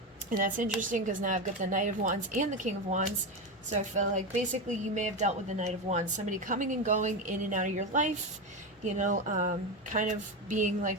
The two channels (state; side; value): normal; both; correlation 0.15